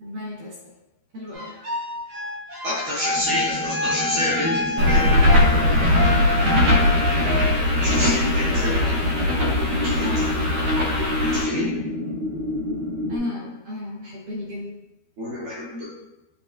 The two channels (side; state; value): left; late; 13 ms